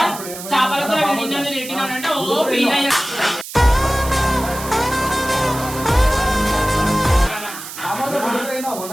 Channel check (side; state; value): right; noise; hiss, 11 dB below the sound